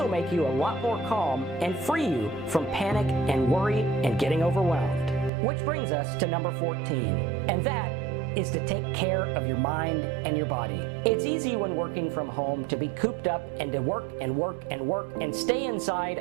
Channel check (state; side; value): drops out; left; at 5.3 s